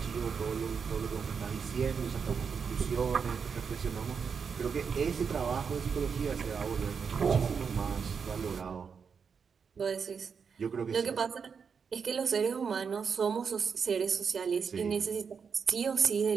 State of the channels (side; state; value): left; quieter; 6.2 dB